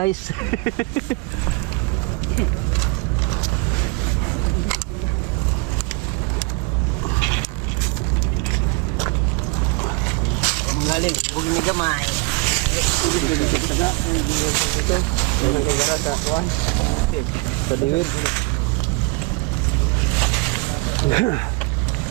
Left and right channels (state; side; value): quieter; left; 26.8 dB